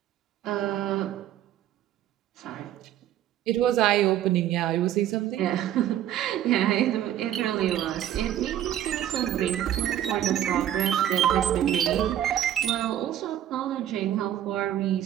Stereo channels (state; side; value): quieter; left; 11.7 dB